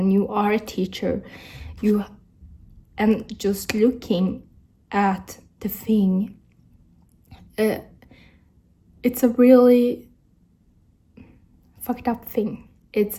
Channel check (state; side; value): identical; both; correlation 1.00